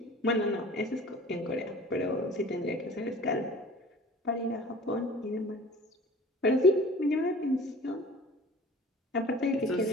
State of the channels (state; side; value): normal; both; correlation 0.44